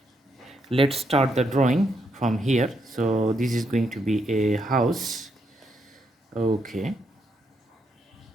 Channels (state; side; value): normal; both; correlation 0.78